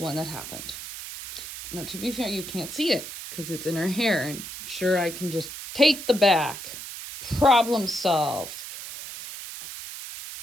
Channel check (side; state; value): right; noise; hiss, 10 dB below the sound